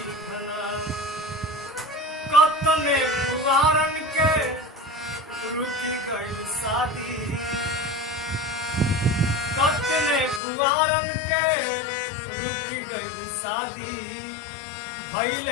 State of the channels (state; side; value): drops out; right; at 10.4 s